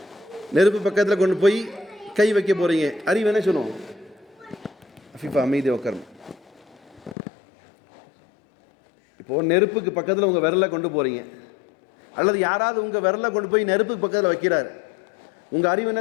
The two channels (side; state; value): right; drops out; at 7.2 s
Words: நெருப்பு பக்கத்தில் கொண்டு போய் கை வைக்க போறீங்க, அறிவு என்ன சொல்லும்? அஃபீஃபா அமைதி உட்காரும். இப்போ நெருப்புக்கு பக்கத்தில் உங்கள் விரலை கொண்டு போறீங்க, அல்லது யாராவது உங்கள் விரலை கொண்டு போய் நெருப்புக்கு பக்கத்தில் வைக்கிறார், உங்கள் அறிவு